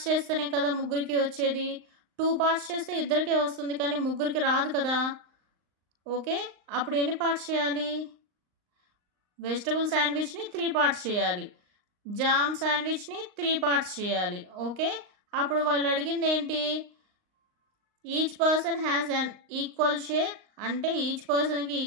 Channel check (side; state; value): left; late; 38 ms